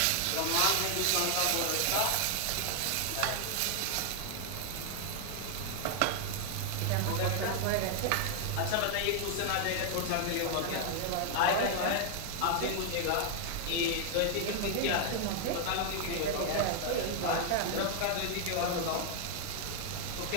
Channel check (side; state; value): both; different; correlation 0.00